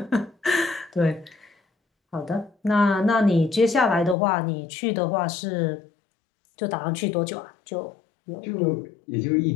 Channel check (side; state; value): right; drops out; at 4.2 s